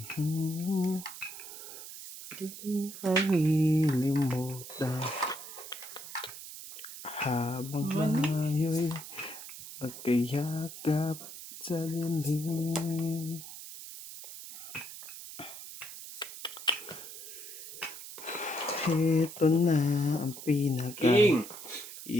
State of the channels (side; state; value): right; noise; hiss, 12 dB below the sound